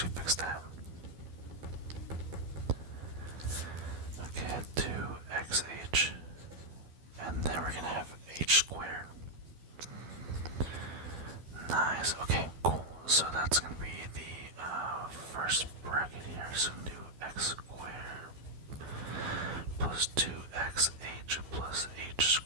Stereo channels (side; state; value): left; late; 12 ms